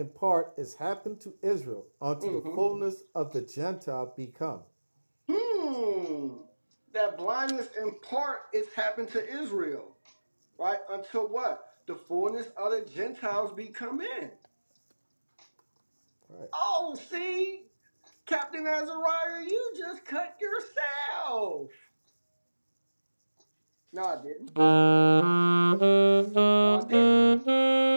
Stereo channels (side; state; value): both; inverted; correlation -1.00